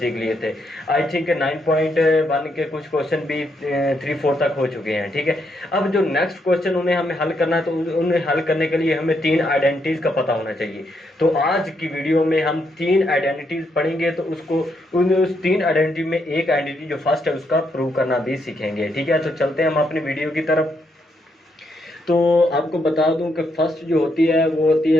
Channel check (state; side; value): normal; both; correlation 0.77